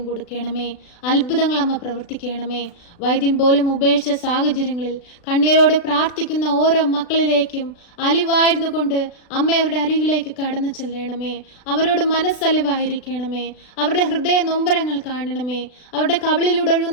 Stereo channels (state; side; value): late; right; 36 ms